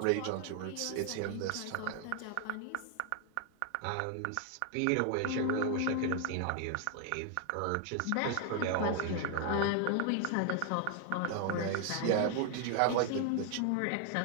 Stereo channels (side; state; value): both; different; correlation 0.00